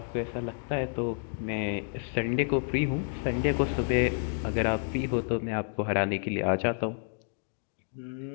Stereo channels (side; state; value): right; silent; digital silence